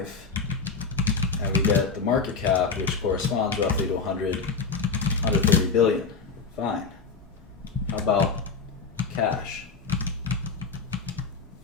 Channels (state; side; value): quieter; right; 5.0 dB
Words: And we get the market cap, which corresponds roughly to 130 billion. Fine. How about cash?